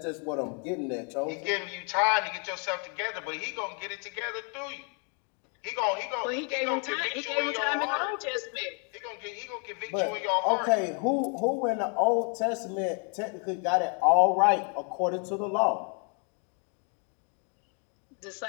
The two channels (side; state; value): right; quieter; 39.0 dB